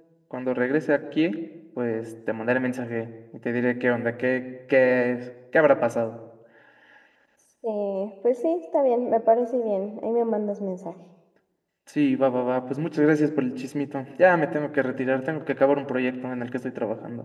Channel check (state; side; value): identical; both; correlation 1.00